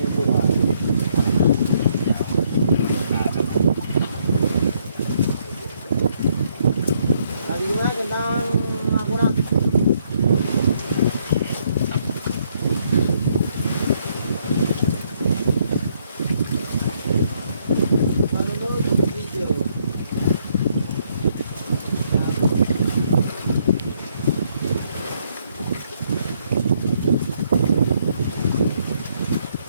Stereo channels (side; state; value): both; inverted; correlation -0.71